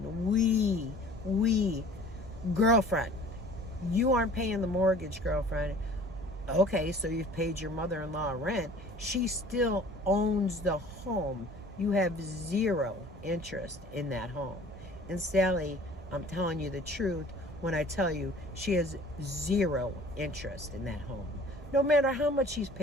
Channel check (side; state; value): both; normal; correlation 0.48